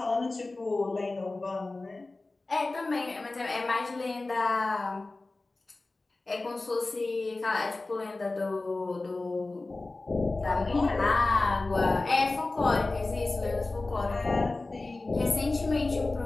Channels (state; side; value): quieter; right; 3.2 dB